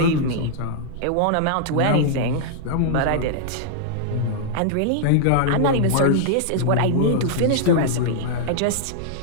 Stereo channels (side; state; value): both; different; correlation -0.01